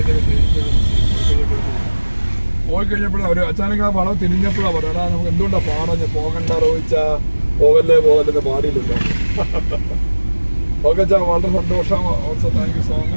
പോയി കഴിഞ്ഞപ്പോഴും അവർ അച്ചാനക്ക് ആ വളം തിരിഞ്ഞപ്പോഴാണ് പറയാ, നമുക്ക് എന്തുകൊണ്ടാണ് പാടഞ്ഞ് പോകണ്ട റോയിച്ചാ, പോകല്ലേ പോകല്ലെന്ന് പാടിയില്ലല്ലോ. ഓക്കെ ചാ, വളരെ സന്തോഷം. Also thank you so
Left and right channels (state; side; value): inverted; both; correlation -1.00